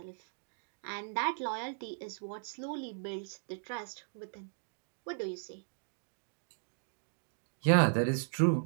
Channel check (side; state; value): left; silent; digital silence